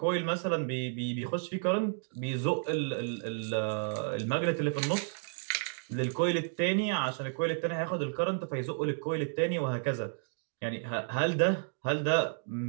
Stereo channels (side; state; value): left; silent; digital silence